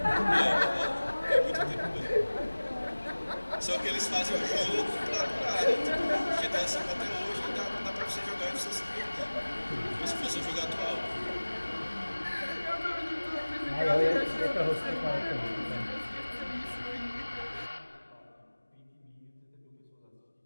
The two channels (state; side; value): inverted; both; correlation -1.00